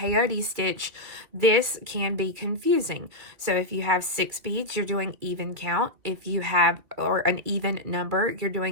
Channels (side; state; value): left; late; 2.3 ms